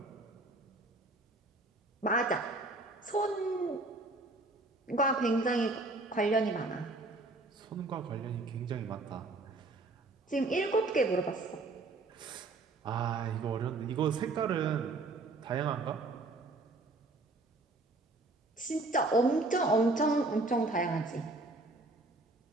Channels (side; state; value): left; quieter; 3.1 dB